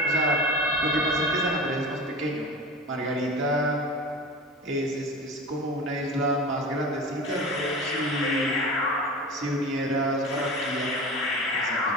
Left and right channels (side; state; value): both; normal; correlation 0.32